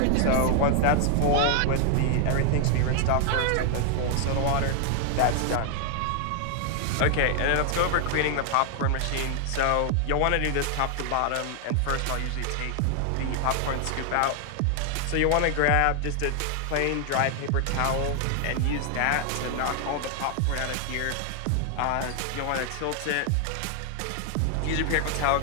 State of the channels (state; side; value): different; both; correlation 0.00